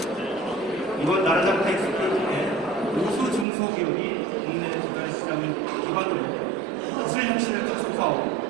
이번 나라장 텍스포에 우수 중소기업이 국내 조달 시장을 기반으로 기술 혁신을加速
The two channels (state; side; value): drops out; left; at 3.5 s